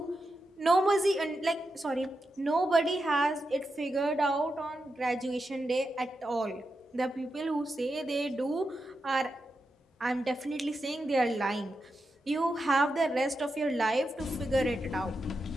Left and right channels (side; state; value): both; normal; correlation 0.88